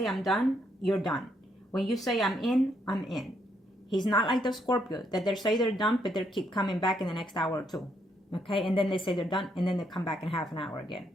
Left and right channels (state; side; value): normal; both; correlation 0.74